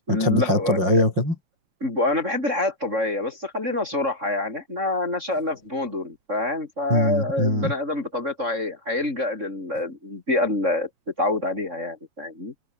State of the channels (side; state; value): left; late; 7.2 ms